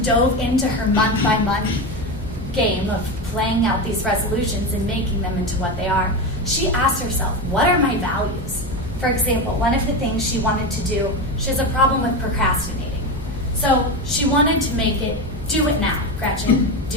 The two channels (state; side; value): normal; both; correlation 0.18